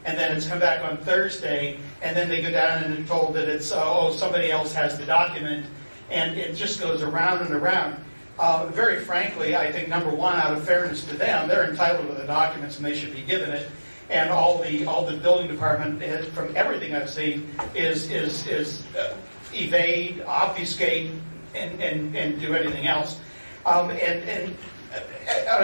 And then it's come back on Thursday, and then they go down and are told that it's, somebody else has the document, and it just goes around and around. Very frankly, I think, number one, out of fairness to them, they're entitled to the documents and they should be given it. And all the building department, from everything I've seen, is evade, obfuscate, and do anything else. And on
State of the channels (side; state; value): both; inverted; correlation -1.00